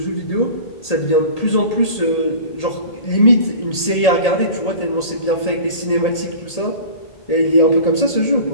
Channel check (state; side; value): late; right; 1.8 ms